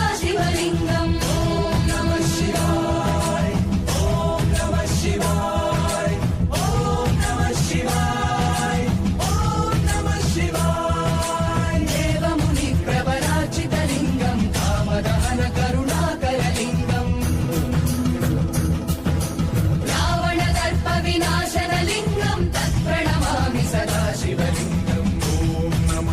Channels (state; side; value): identical; both; correlation 1.00